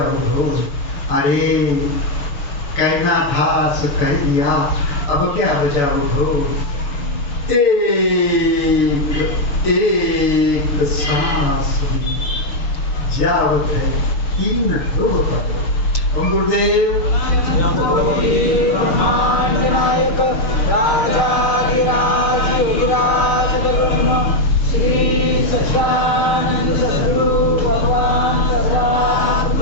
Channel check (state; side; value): late; right; 6.6 ms